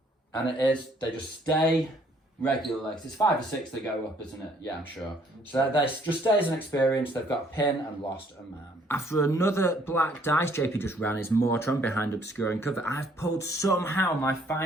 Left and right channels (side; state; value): both; normal; correlation 0.63